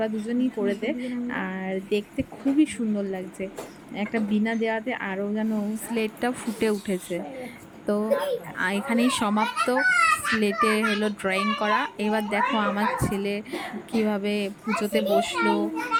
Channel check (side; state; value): both; identical; correlation 1.00